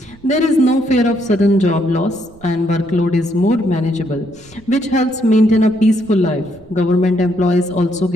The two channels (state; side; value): noise; right; rumble, 26 dB below the sound